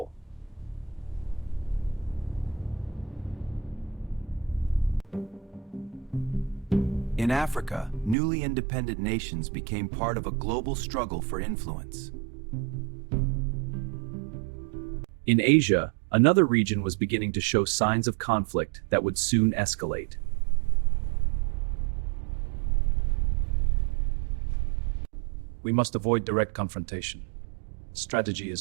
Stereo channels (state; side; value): drops out; left; at 8.2 s